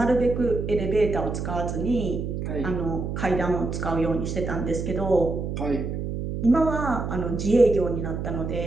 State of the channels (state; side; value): noise; right; hum, 4 dB below the sound